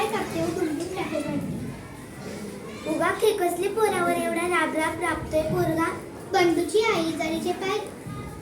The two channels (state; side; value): identical; both; correlation 1.00